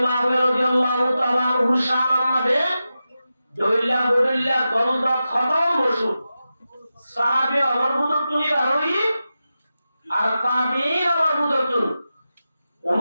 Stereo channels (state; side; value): inverted; both; correlation -0.92